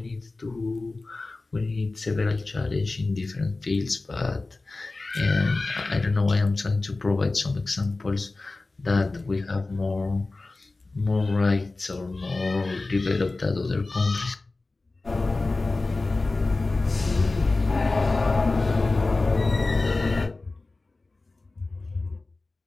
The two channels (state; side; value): quieter; right; 3.3 dB